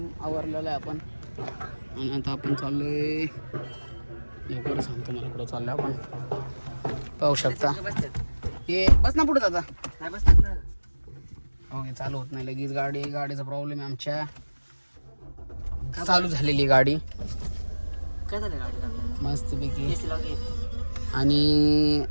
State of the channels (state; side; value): inverted; both; correlation -1.00